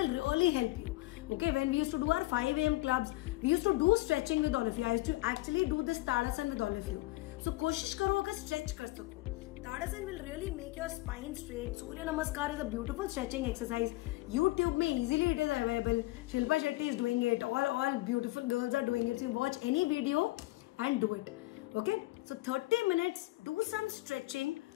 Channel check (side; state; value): right; quieter; 19.8 dB